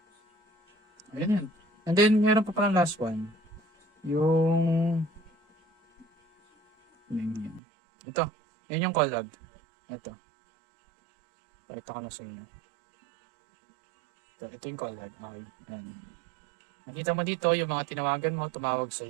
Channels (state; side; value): drops out; left; at 7.6 s